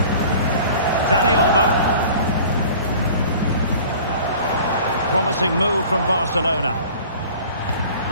Dani Olmo. Promising move from Barcelona.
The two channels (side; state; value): both; inverted; correlation -0.46